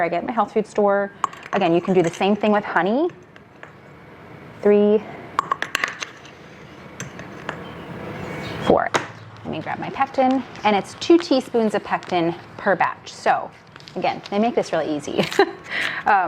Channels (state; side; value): identical; both; correlation 1.00